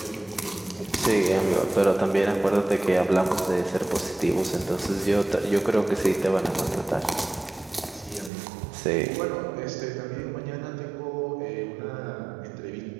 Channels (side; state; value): left; drops out; at 8.3 s